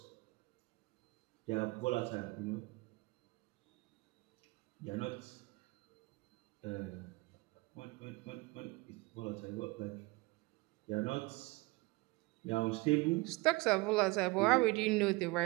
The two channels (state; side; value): quieter; left; 24.5 dB